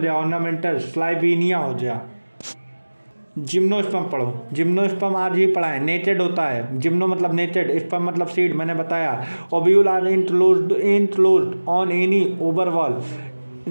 ऑर्नामेंटल, स्लाइबीनिया हो गया। जिम्नोस्पर्म पढ़ो, जिम्नोस्पर्म आज ही पढ़ा है। नेटेड होता है, जिम्नो मतलब नेटेड, स्पर्म मतलब सीड, मैंने बताया। Ovule are enclosed on any ovary wall,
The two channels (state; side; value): inverted; both; correlation -1.00